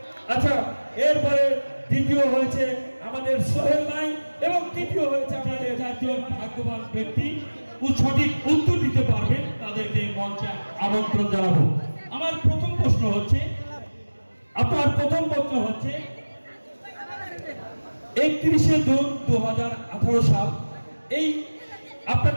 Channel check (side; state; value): both; inverted; correlation -1.00